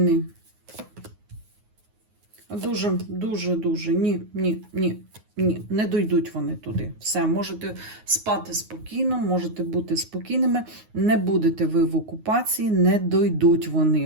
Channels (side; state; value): left; late; 9.5 ms